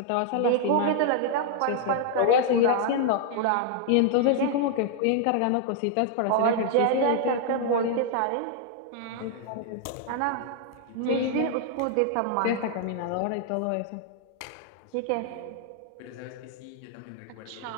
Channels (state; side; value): different; both; correlation -0.01